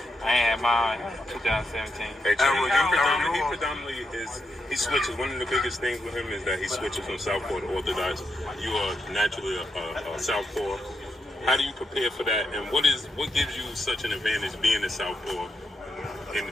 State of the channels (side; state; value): both; normal; correlation 0.83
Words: I ain't had my eye on him 2017. Hey, he predominantly he switches. One of the biggest things with him is that he switches from southpaw to orthodox. You are naturally a southpaw. How do you prepare for that, and what gives you such an advantage being a southpaw